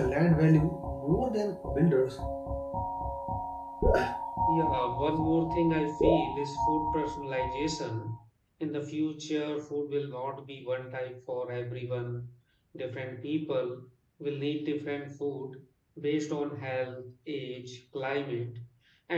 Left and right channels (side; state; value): both; identical; correlation 1.00